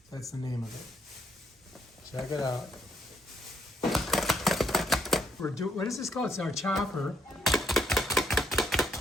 That's the name of it. Check it out. What is this called? It's our chopper.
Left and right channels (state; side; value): normal; both; correlation 0.72